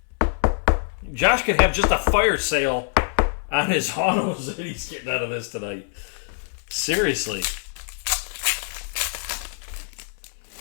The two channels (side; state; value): right; silent; 62 dB below the other